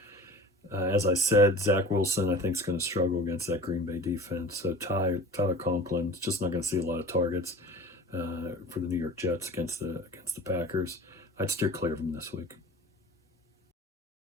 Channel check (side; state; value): both; normal; correlation 0.39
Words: As I said, Zach Wilson, I think, is going to struggle against that Green Bay defense. So Tyler Conklin is just not going to see a lot of targets for the New York Jets against the Packers. I'd steer clear of him this week.